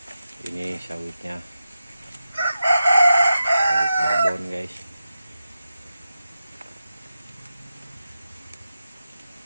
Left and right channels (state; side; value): inverted; both; correlation -0.91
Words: ini sawitnya, sawit babon guys.